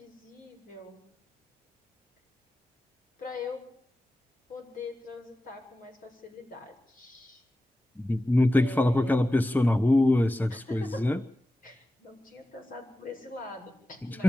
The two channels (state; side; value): normal; both; correlation 0.94